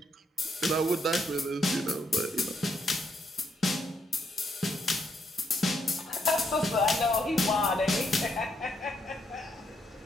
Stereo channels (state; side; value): normal; both; correlation 0.76